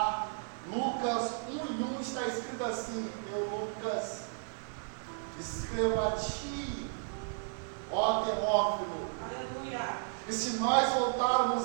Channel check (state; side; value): silent; left; digital silence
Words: Lucas 1:1 está escrito assim: eu, Lucas, escrevo a ti, ó Teófilo. Aleluia. E se nós